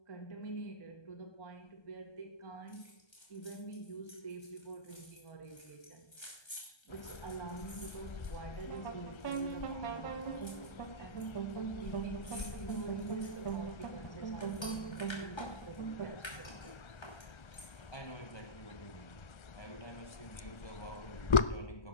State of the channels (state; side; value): late; right; 1.3 ms